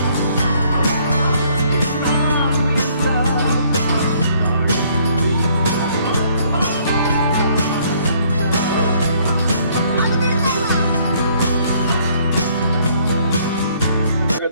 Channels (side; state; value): both; inverted; correlation -0.64